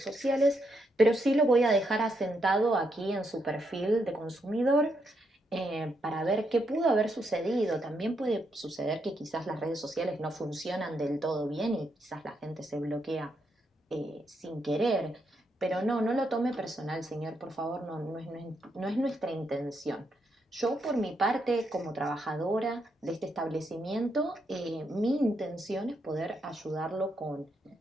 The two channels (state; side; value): normal; both; correlation 0.79